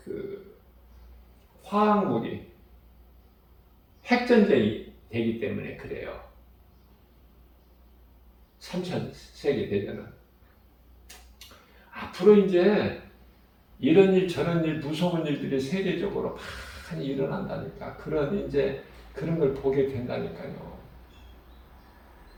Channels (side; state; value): both; identical; correlation 1.00